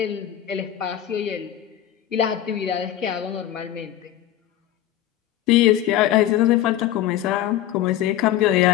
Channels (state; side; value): quieter; right; 12.2 dB